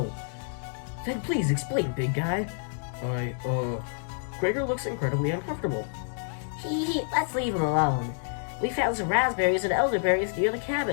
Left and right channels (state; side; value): silent; right; digital silence